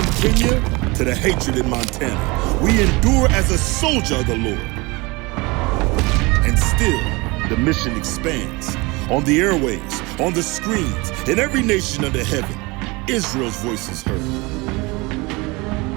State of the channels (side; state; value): left; quieter; 25.0 dB